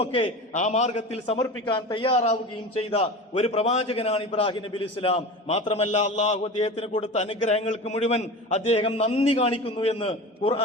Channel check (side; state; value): both; normal; correlation 0.31